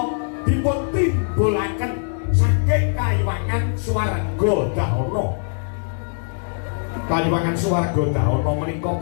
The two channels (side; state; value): right; silent; digital silence